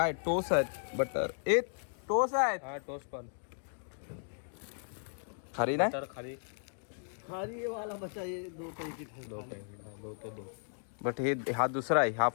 टोस आहेत बटर. ए टोस आहेत. हा टोस्ट पण खारी नाही. तर खाली खारी वाला बचा ये 2 पैकी दो. बट हे हा दुसरा आहे. हा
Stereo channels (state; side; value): silent; right; digital silence